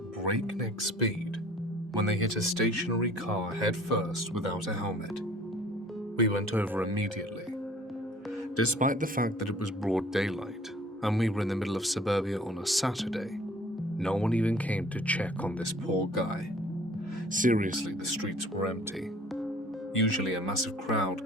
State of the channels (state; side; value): normal; both; correlation 0.52